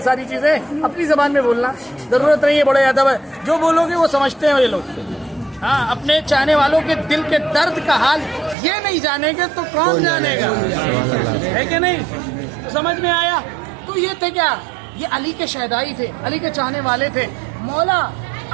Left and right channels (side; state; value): left; drops out; at 8.6 s